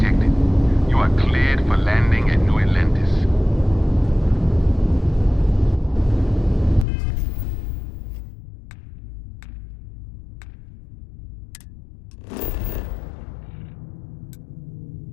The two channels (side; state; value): right; drops out; at 6.9 s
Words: You are cleared for landing at New Atlantis.